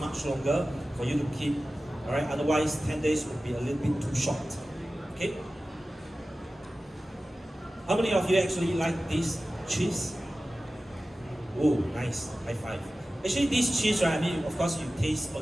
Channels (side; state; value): both; normal; correlation 0.95